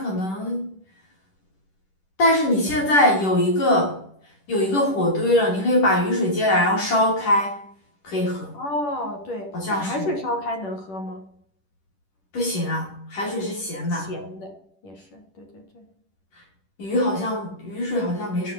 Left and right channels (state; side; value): late; right; 10 ms